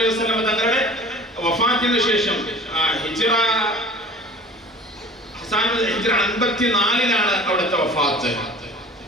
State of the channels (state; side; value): normal; both; correlation 0.43